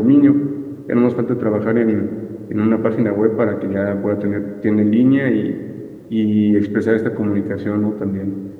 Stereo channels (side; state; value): both; identical; correlation 1.00